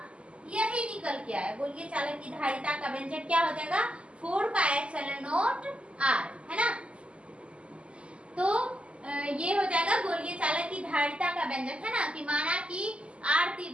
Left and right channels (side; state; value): left; late; 0.056 ms